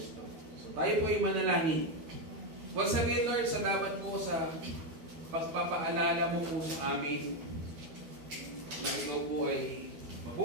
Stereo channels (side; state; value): left; late; 12 ms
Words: So tayo po ay manalangin. Once again, Lord, salamat po sa pagpapaalala mo po sa amin na ikaw po ay